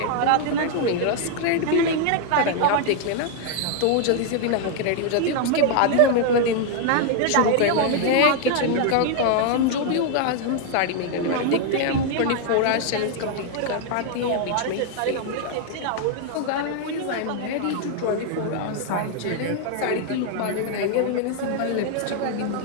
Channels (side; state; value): both; different; correlation 0.00